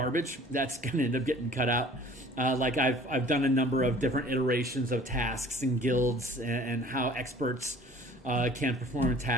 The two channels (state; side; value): normal; both; correlation 0.49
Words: That's going to end up getting cut out. Like I've done a number of different iterations of tasks and guilds and how experts can perform